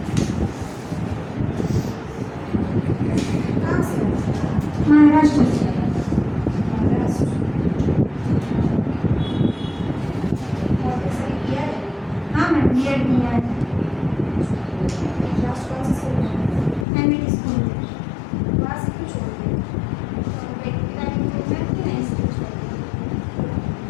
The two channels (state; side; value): drops out; right; at 16.9 s